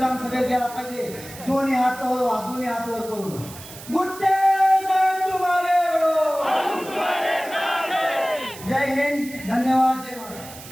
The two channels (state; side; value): noise; right; hiss, 16 dB below the sound